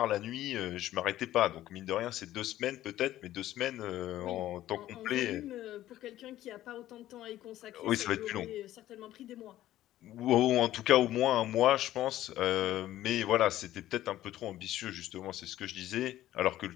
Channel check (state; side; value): quieter; right; 13.8 dB